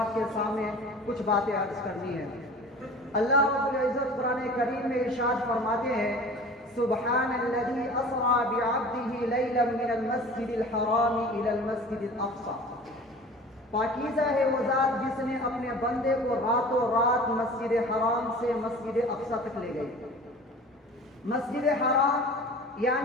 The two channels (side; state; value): both; normal; correlation 0.41